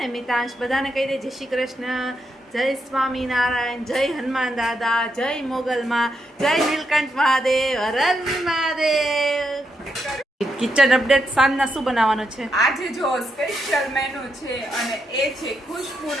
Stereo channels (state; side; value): normal; both; correlation 0.81